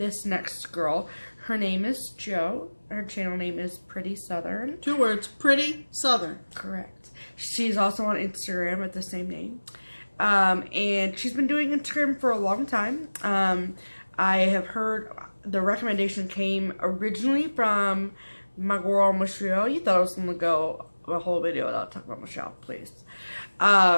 next girl. Her name is Jo. Her channel name is Pretty Southern. 2 words, Pretty Southern. Correct. She's also on Instagram with the same name. And she's been doing Instagram for a long time. I have heard the recommendation came originally from my girl Michelle. You thought I was going to go a whole video without talking about Michelle, please.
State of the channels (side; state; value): both; inverted; correlation -1.00